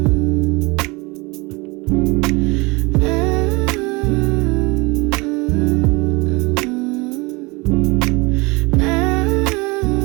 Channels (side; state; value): left; quieter; 25.8 dB